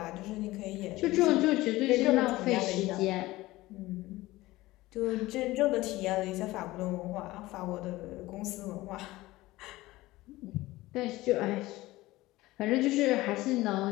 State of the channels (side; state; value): right; quieter; 18.5 dB